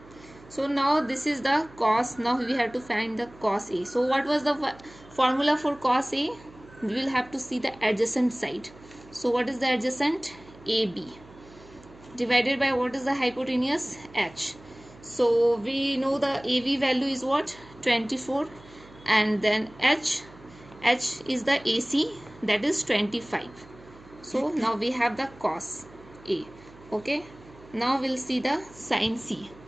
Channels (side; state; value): right; noise; hum, 22 dB below the sound